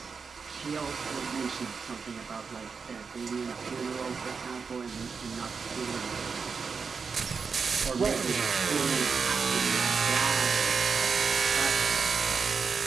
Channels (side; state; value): left; quieter; 5.4 dB